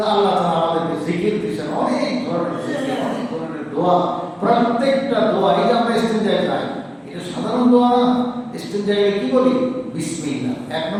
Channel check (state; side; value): identical; both; correlation 1.00